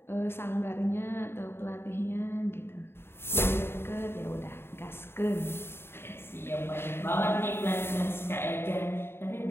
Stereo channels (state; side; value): late; right; 0.11 ms